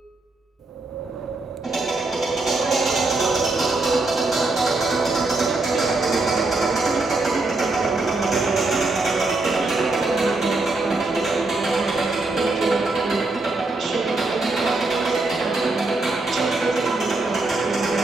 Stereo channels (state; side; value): quieter; left; 3.2 dB